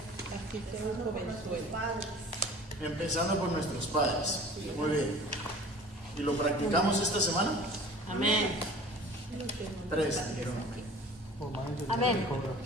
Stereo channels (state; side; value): normal; both; correlation 0.44